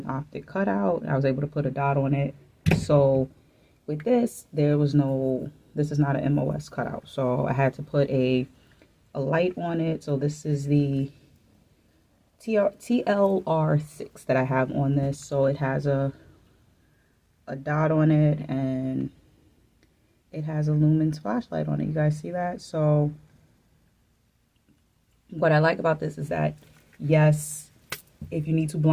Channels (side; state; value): both; identical; correlation 1.00